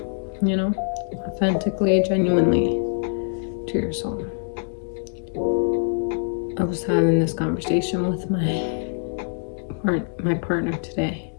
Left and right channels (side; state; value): right; silent; digital silence